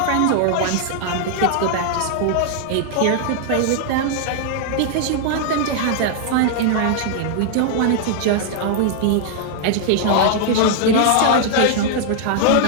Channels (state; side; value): different; both; correlation -0.01